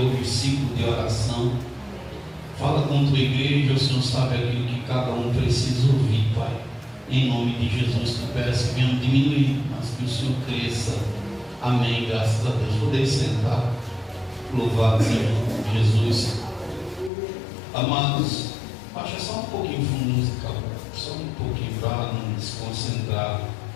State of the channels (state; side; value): drops out; right; at 17.1 s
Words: ciclo de oração. Fala com tua igreja, o Senhor sabe aquilo que cada um precisa ouvir, Pai. Em nome de Jesus, que peço que venham diminuir, mas que o Senhor cresça. Amém, graças a Deus. Podem sentar. Louvado seja Jesus. Amados, baixa só um pouquinho o fundo musical, só um pouquinho para não desconcentrar.